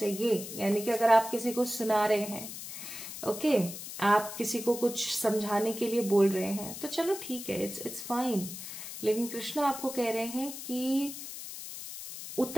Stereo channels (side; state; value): left; noise; hiss, 10 dB below the sound